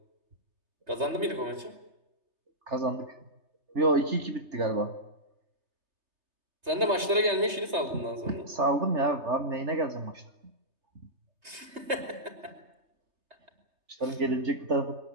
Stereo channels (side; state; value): left; late; 3.2 ms